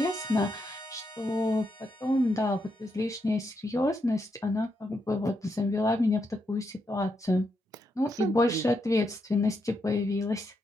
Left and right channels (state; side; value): normal; both; correlation 0.81